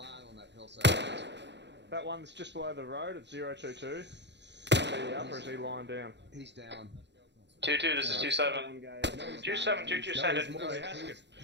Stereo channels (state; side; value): late; left; 0.51 ms